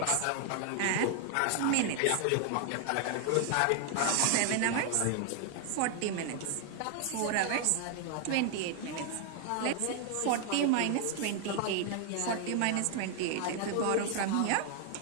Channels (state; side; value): different; both; correlation 0.00